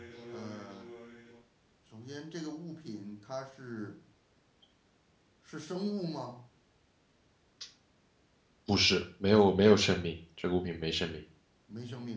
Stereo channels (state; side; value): identical; both; correlation 1.00